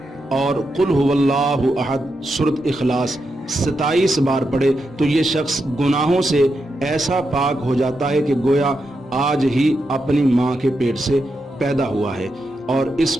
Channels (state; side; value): normal; both; correlation 0.85